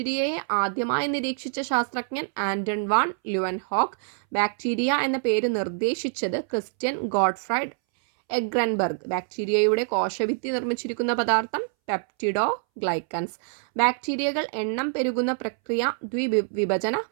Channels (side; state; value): left; silent; 61 dB below the other